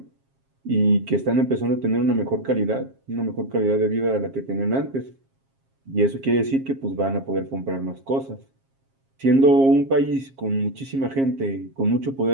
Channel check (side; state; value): left; late; 7.4 ms